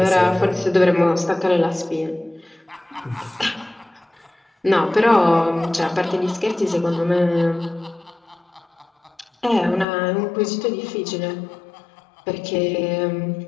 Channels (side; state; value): right; drops out; at 9.9 s